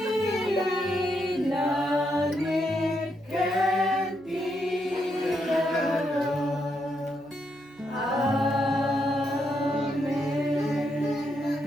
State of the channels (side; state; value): right; noise; hum, 28 dB below the sound